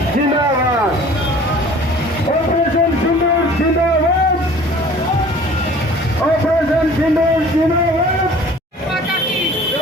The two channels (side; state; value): both; normal; correlation 0.48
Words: जिंदाबाद, ऑपरेशन सिंदूर जिंदाबाद, ऑपरेशन सिंदूर जिंदाबाद,